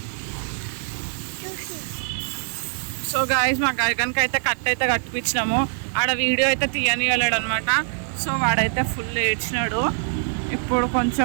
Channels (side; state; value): left; silent; 63 dB below the other